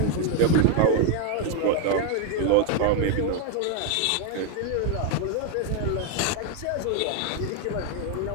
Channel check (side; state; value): both; different; correlation 0.00